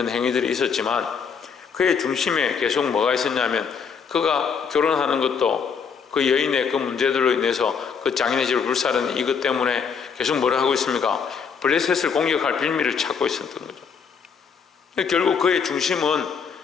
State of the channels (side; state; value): right; quieter; 6.3 dB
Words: 행위들이 있었지만, 그의 중심에 계속 뭐가 있었냐면, 그가 결혼하는 것도 그 여인의 그 문제들로 인해서 그 장인의 집을 불사르는 이것 때문에 계속 뭐라 하고 있습니까? 블레셋을 공격할 빌미를 찾고 있었던 거죠. 결국 그의 중심은